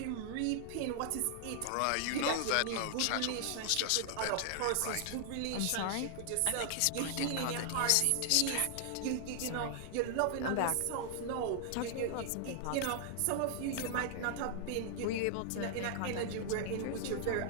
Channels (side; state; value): both; different; correlation 0.00